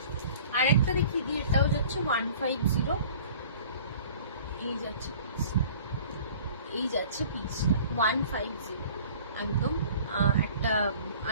আর একটা দেখি দিই, এটাও যাচ্ছে 150। এই যাচ্ছে পিসটা, এই যাচ্ছে পিসটা 150, একদম একটা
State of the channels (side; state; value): both; inverted; correlation -0.47